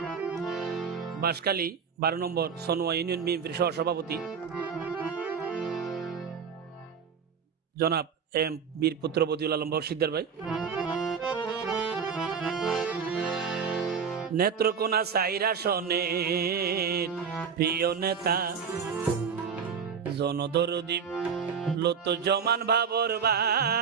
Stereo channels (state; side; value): quieter; left; 6.5 dB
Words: বাঁশখালী 12 নম্বর সনোয়া ইউনিয়ন বিএনপির সহসভাপতি জনাব এম বীরপুত্র বদিউল আলম বক্সিদ্দার ভাই নেত্রকোনা 4 আসনের প্রিয় নেতা জনদরদী লুৎফুজ্জামান বাবর